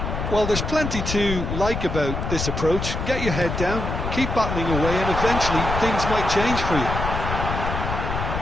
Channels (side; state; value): left; noise; rumble, 3 dB below the sound